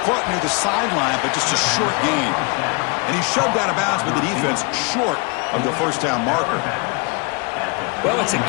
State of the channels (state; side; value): quieter; right; 31.5 dB